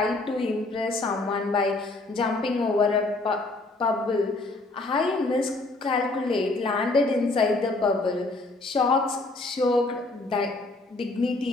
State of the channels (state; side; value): quieter; right; 3.1 dB